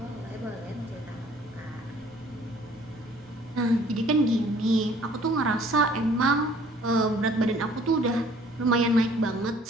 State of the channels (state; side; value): normal; both; correlation 0.56